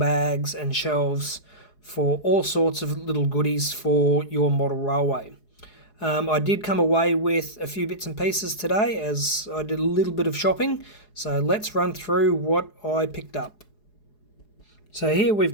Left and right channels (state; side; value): late; right; 4.8 ms